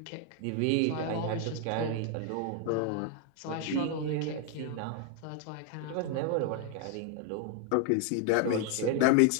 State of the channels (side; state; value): both; different; correlation 0.01